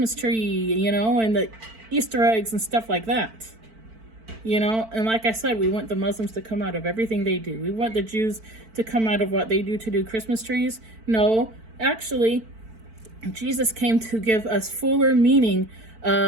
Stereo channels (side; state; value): left; late; 4.5 ms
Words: tree, and the Easter eggs and stuff like that. And like I said, we want the Muslims to come out of everything they do. We want the Jews to come out of what they do to do Christmas trees. No, actually, Jesus came to give us fuller meaning